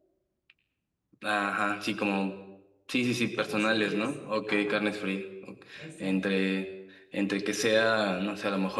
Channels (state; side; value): identical; both; correlation 1.00